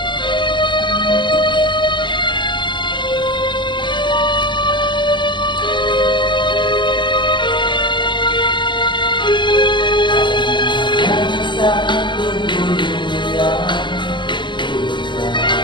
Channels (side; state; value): right; late; 0.22 ms